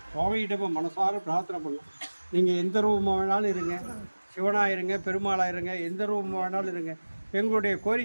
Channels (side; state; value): both; inverted; correlation -1.00